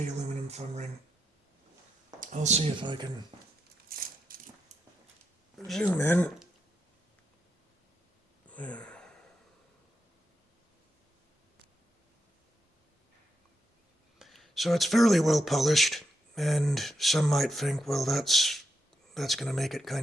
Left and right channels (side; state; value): both; normal; correlation 0.83